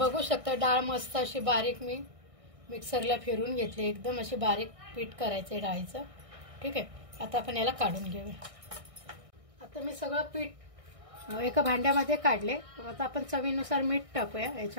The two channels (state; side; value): late; left; 1.6 ms